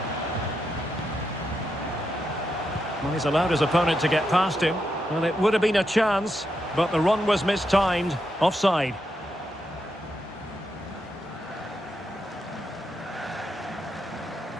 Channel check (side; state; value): both; normal; correlation 0.84